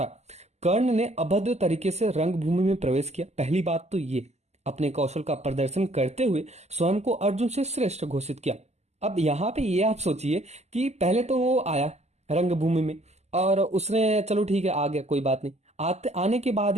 कर्ण ने अभद्र तरीके से रंगभूमि में प्रवेश किया। पहली बात तो ये, अपने कौशल का प्रदर्शन करते हुए स्वयं को अर्जुन से श्रेष्ठ घोषित किया। अब यहाँ पे ये आप सोचिए कि पहले तो वो आया रंगभूमि में और उसने चलो ठीक है आ गया, कोई बात नहीं, आने के बाद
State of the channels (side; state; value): left; late; 0.32 ms